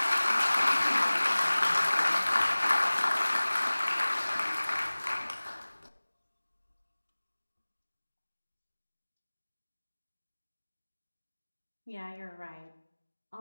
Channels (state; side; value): inverted; both; correlation -1.00